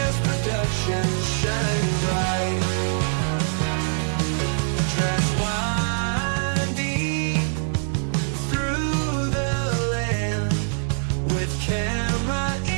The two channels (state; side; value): silent; left; digital silence